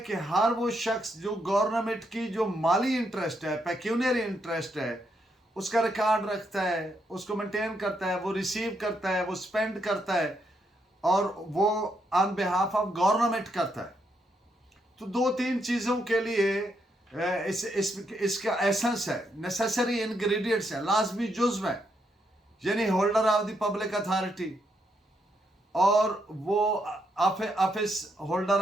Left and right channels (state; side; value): normal; both; correlation 0.78